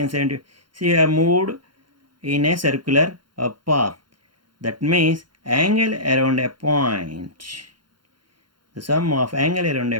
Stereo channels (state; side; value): late; left; 0.72 ms